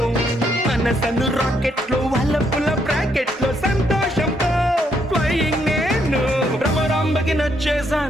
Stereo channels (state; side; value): normal; both; correlation 0.74